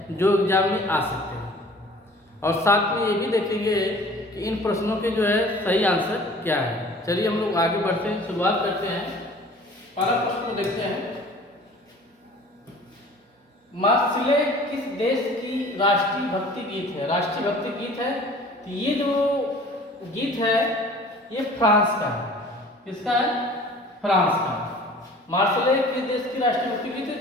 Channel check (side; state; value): both; normal; correlation 0.47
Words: जो एग्जाम में आ सकते हैं। और साथ में ये भी देखेंगे कि इन प्रश्नों के जो है सही आंसर क्या है। चलिए हम लोग आगे बढ़ते हैं, शुरुआत करते हैं। पहला प्रश्न को देखते हैं। मार्सिले किस देश की राष्ट्रीय भक्ति गीत है? राष्ट्रीय भक्ति गीत है तो ये जो गीत है ये फ्रांस का है। किसका है? फ्रांस का। मार्सिले किस देश की राष्ट्रीय भक्ति गीत है